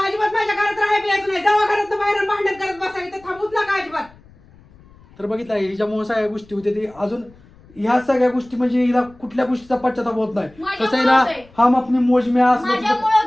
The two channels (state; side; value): noise; left; rumble, 26 dB below the sound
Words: अजिबात माझ्या घरात राहायला यायचं नाही. जेव्हा घरात बाहेर भांडण करत बसायचं इथं थांबूच नका अजिबात. तर बघितलं हिच्यामुळे सगळ्या गोष्टी होत्या ती. अजून ह्या सगळ्या गोष्टी म्हणजे हिला कुठल्या गोष्टीचा पश्चाताप होत नाही. माझ्यामुळे कसं आहे ना, होतंय. हम अपनी मौज में असं माझ्यामुळे